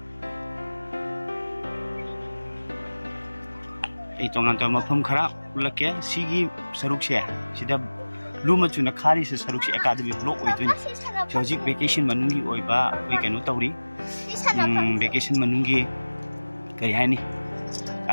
Itong aton mapam khara, ulak ya, sigi saruk siya. Sida luma chuna khari se saruk siya academy block oidun. Hojik vacation manungi oiba koi kanu tawri vacation manungi kari haini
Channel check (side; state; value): both; inverted; correlation -1.00